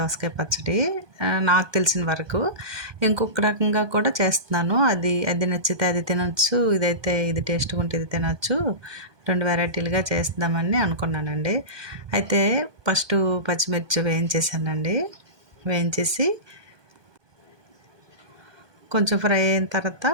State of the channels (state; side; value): late; left; 1.2 ms